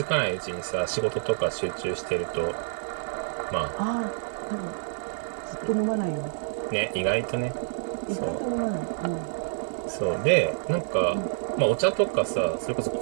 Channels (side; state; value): left; silent; digital silence